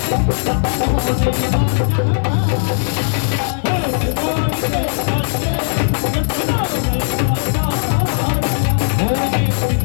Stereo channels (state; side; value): silent; right; digital silence